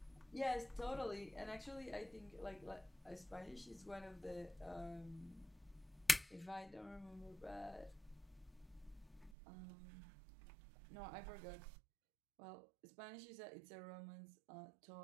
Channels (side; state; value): left; drops out; at 9.3 s